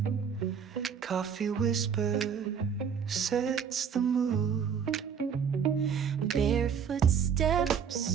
coffee whisper sets the mood. Barefoot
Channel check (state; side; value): quieter; left; 7.1 dB